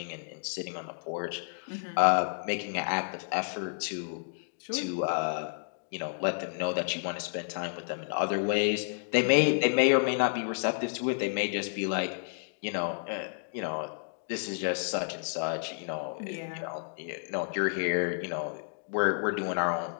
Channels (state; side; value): silent; right; digital silence